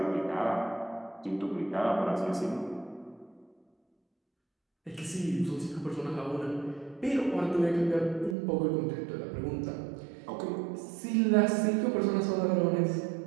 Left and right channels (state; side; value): drops out; left; at 8.3 s